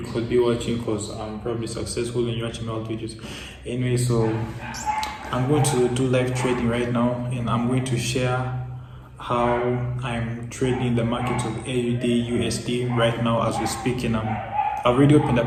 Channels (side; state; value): both; identical; correlation 1.00